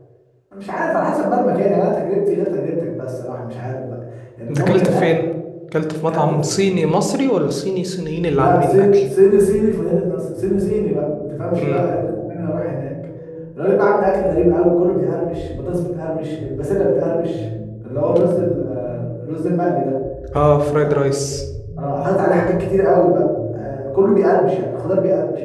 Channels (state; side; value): identical; both; correlation 1.00